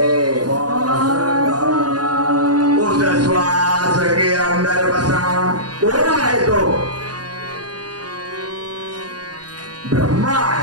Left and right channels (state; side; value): late; left; 0.69 ms